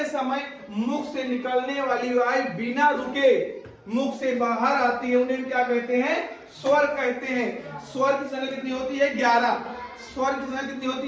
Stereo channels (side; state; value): both; identical; correlation 1.00